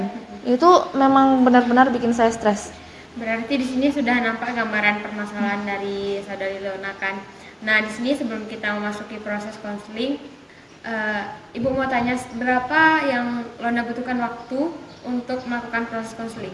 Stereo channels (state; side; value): identical; both; correlation 1.00